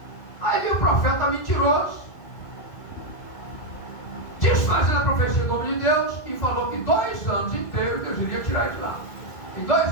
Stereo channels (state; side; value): late; right; 1.8 ms